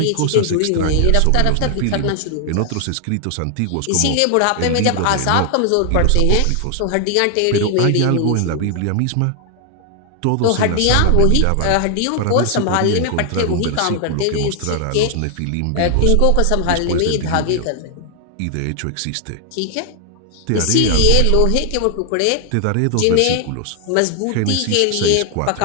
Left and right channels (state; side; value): different; both; correlation 0.00